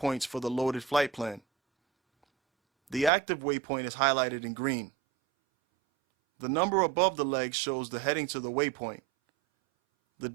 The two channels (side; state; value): left; drops out; at 3.1 s